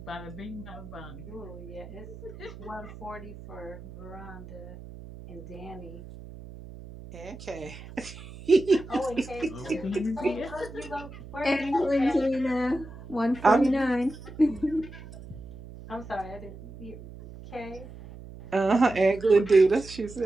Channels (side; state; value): right; noise; hum, 15 dB below the sound